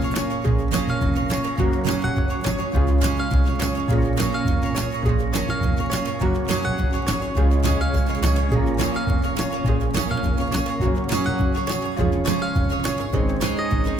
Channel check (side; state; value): both; normal; correlation 0.76